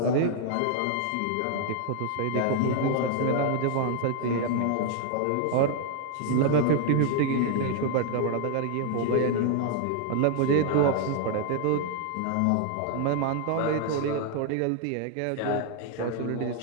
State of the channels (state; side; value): different; both; correlation 0.00